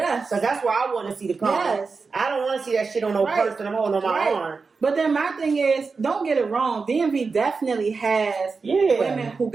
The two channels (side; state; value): left; quieter; 4.6 dB